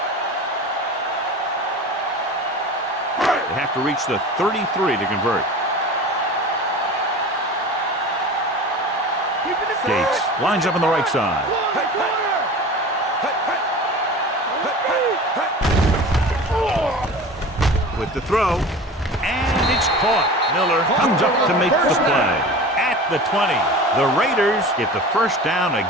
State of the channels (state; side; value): normal; both; correlation 0.36